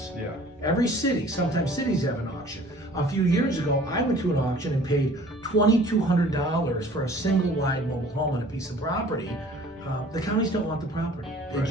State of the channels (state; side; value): normal; both; correlation 0.50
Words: Yeah. Every city, sometimes cities have an auction. A few years ago, I went to an auction and paid $2,200 for a single wide mobile home on a piece of property. The counties don't want the property, they